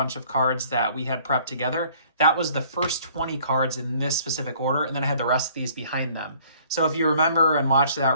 of cards that we had prepped together. That was the first 20 cards in this specific order, and then I had the rest of these behind them. So if you remember and watched that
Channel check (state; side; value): inverted; both; correlation -0.57